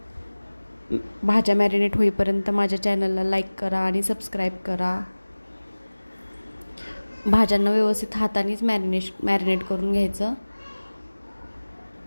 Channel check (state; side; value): inverted; both; correlation -1.00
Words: भाज्या मॅरिनेट होईपर्यंत माझ्या चॅनलला लाईक करा आणि सबस्क्राईब करा। भाज्यांना व्यवस्थित हातानेच मॅरिनेट करून घ्यायचं।